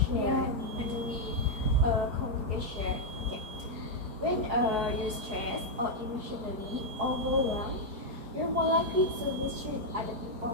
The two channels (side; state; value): left; late; 4.7 ms